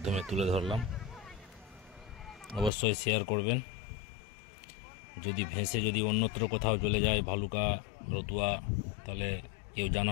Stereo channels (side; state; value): right; drops out; at 2.7 s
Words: তুলে ধরলাম, অবশ্যই শেয়ার করবেন। যদি ভেসে যদি অন্যত্র কোথাও চলে যায়, ভালুকা, রতুয়া, তাহলে কেউ